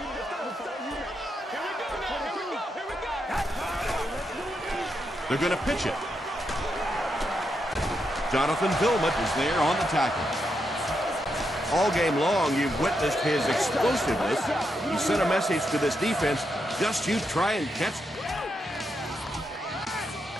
They're going to pitch it. Jonathan Vilmot is there on the tackle. All game long, you've witnessed his explosiveness. He sent a message to this defense, just you try and catch.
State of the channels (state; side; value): normal; both; correlation 0.83